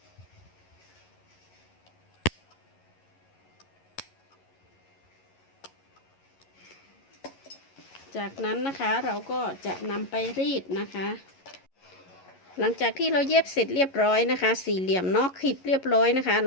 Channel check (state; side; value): late; right; 11 ms